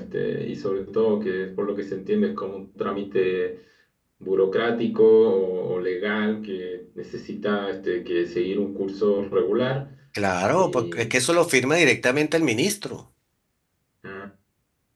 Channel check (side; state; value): both; identical; correlation 1.00